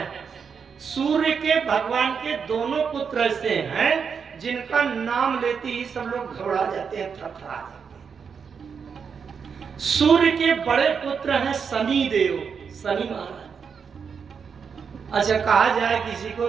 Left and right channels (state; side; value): quieter; left; 6.3 dB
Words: सूर्य के भगवान के दोनों पुत्र ऐसे हैं जिनका नाम लेते ही सब लोग घबरा जाते हैं, थरथरा जाते हैं। सूर्य के बड़े पुत्र हैं शनि देव, शनि महाराज। अच्छा, कहा जाए किसी